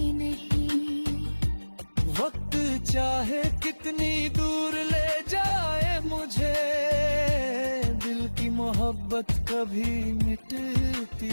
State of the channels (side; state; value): both; inverted; correlation -1.00